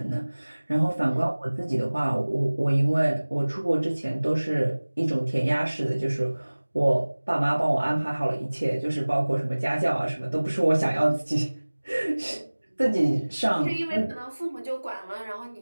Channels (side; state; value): both; inverted; correlation -1.00